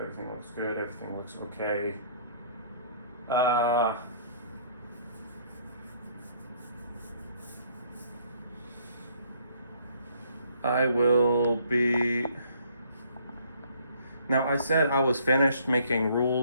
looks good. Everything looks okay. I will be... Now, I said I was finished making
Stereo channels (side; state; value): both; inverted; correlation -0.62